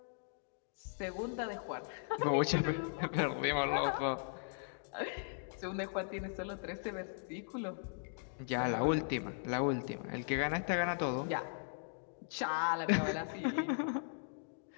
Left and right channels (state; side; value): silent; right; digital silence